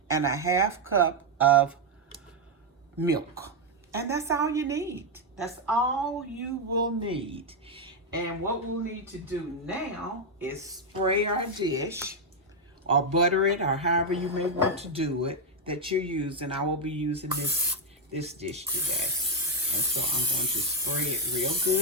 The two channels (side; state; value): both; normal; correlation 0.02